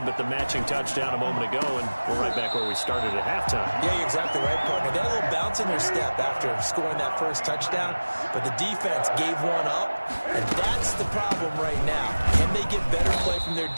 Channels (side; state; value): both; inverted; correlation -1.00